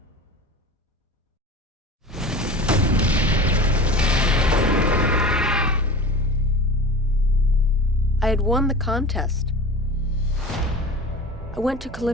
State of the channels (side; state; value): both; normal; correlation 0.34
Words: I had won the contest. I went to